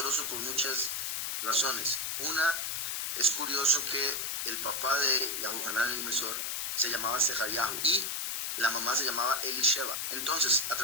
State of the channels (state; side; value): noise; left; hiss, 2 dB below the sound